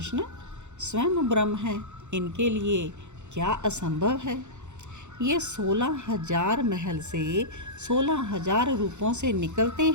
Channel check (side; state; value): left; late; 0.83 ms